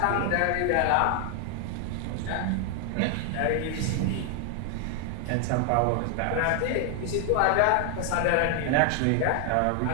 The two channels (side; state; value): both; different; correlation 0.00